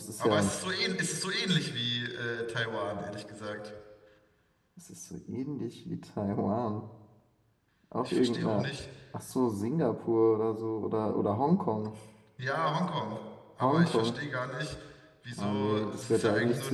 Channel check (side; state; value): both; identical; correlation 1.00